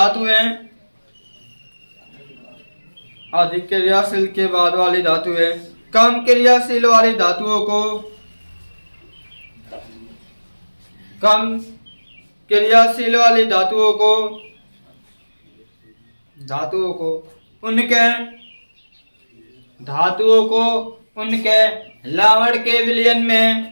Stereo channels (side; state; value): both; inverted; correlation -1.00